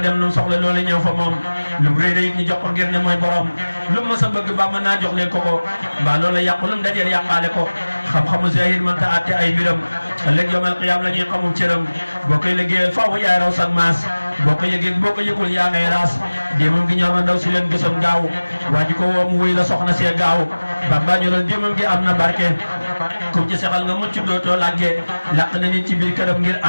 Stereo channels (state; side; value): inverted; both; correlation -1.00